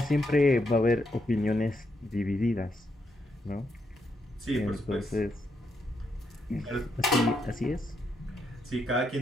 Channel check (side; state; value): both; normal; correlation 0.79